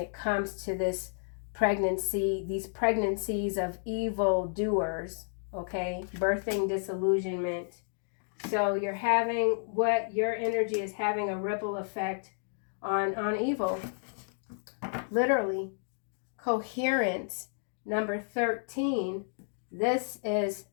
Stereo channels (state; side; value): silent; right; digital silence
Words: comes to this pregnancy, these pregnancies of evil doers, okay? Birthing disillusionment. So you're having, what your energy is having a ripple effect on evil. Literally. Coherence. Number 13. This is